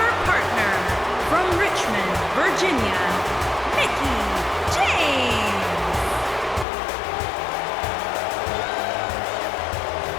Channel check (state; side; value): drops out; right; at 6.7 s